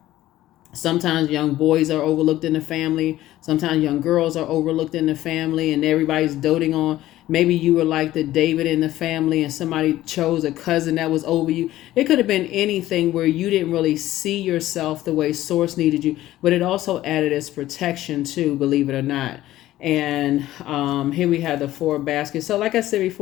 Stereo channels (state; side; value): quieter; right; 14.8 dB